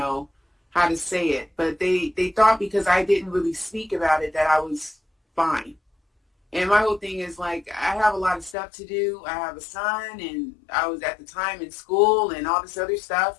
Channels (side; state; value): right; drops out; at 8.6 s